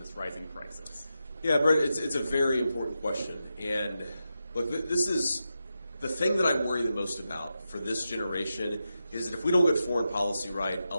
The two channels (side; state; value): both; inverted; correlation -0.89